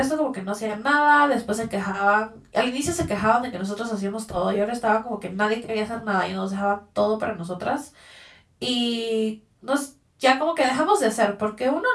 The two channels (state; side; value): identical; both; correlation 1.00